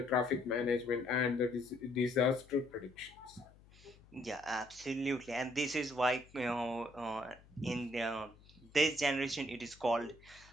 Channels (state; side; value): noise; left; hum, 25 dB below the sound